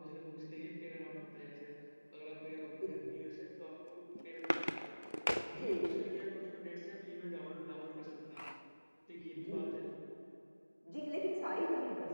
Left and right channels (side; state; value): both; inverted; correlation -1.00